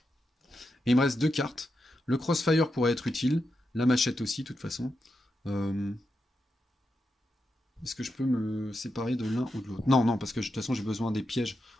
Et il me reste 2 cartes. Le crossfire pourrait être utile. La machette aussi, de toute façon. Est-ce que je peux me séparer de l'un ou de l'autre? Non, non, parce que de toute façon, j'ai besoin des pièges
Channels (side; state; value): both; normal; correlation 0.87